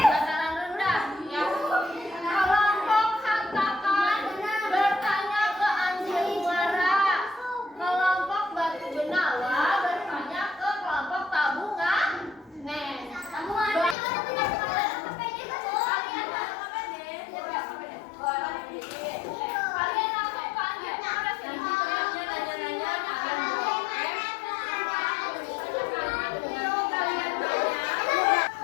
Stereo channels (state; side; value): drops out; right; at 14.0 s